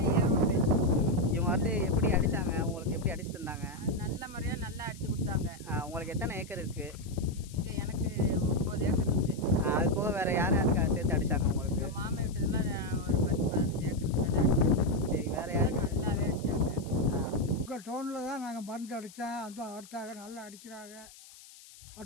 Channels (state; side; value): noise; left; hiss, 20 dB below the sound